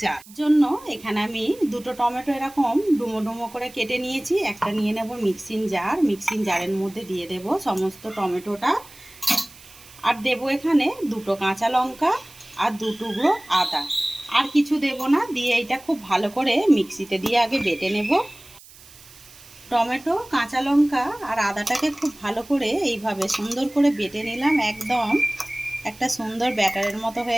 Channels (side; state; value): right; noise; hiss, 22 dB below the sound